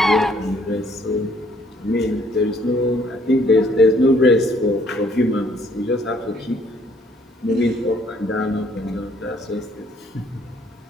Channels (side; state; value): both; normal; correlation 0.63